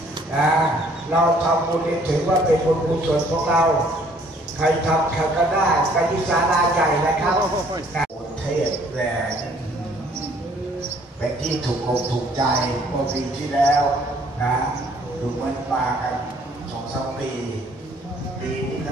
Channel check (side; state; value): both; normal; correlation 0.60